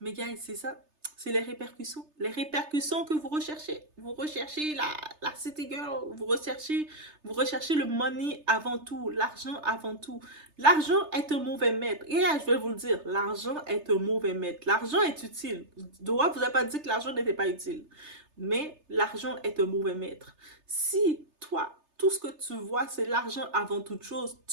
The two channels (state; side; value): late; left; 3.3 ms